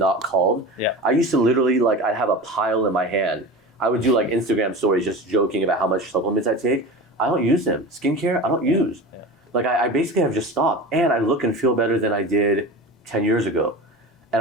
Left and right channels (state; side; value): normal; both; correlation 0.31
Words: called. Yeah. I used to literally I'd have a pile in my hand. I would do like Instagram stories just joking about how much supplements I take. I don't use them. Skincare, I don't use. Yeah. Like I basically have just stopped, and I look and feel better than I did 10 years ago.